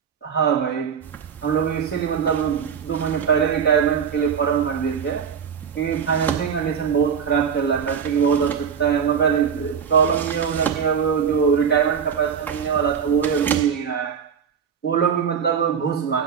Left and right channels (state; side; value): quieter; left; 7.2 dB